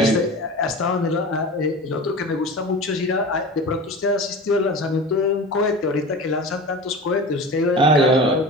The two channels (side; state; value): both; normal; correlation 0.33